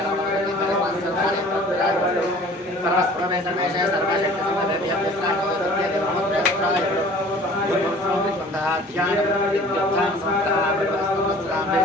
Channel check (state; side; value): normal; both; correlation 0.48